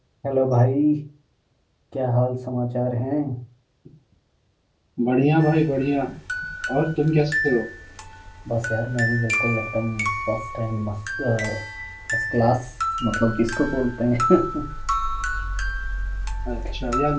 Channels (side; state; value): both; identical; correlation 1.00